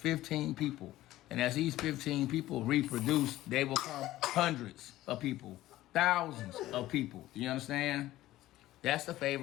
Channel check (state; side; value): quieter; right; 15.6 dB